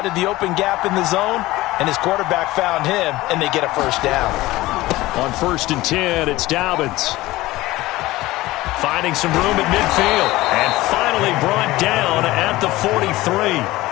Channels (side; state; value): right; quieter; 18.2 dB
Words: the open gap in the zone, and his quarterback found him, and they get a first down. On 1st and 10, it's Dobbins. Finding some room at midfield, and finally brought down at the 43.